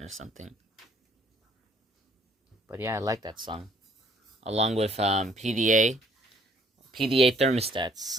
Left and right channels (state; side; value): normal; both; correlation 0.62